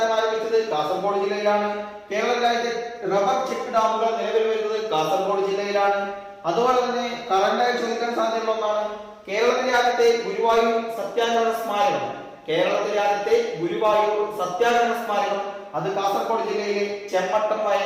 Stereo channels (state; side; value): identical; both; correlation 1.00